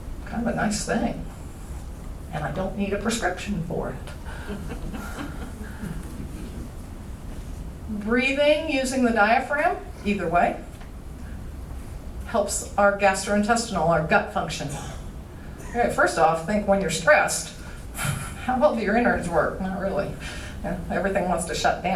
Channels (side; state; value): both; identical; correlation 1.00